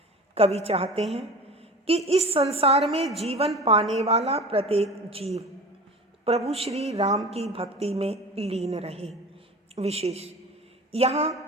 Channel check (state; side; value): normal; both; correlation 0.36